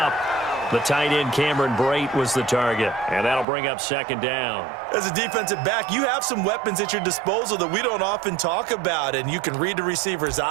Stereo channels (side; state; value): left; drops out; at 3.5 s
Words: The tight end, Cameron Brate, was the target. And that'll bring up second down. As a defensive back, you have some weapons at your disposal that we don't often talk about. And you can read the receiver's